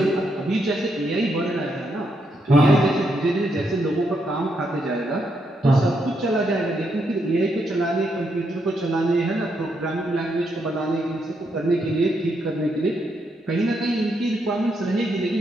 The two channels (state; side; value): normal; both; correlation 0.79